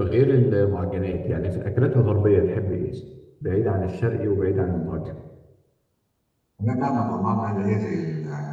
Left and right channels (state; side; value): identical; both; correlation 1.00